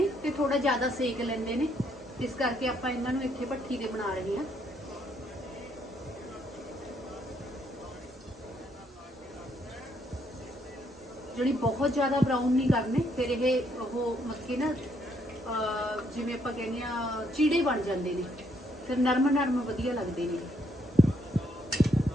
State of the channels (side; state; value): both; normal; correlation 0.72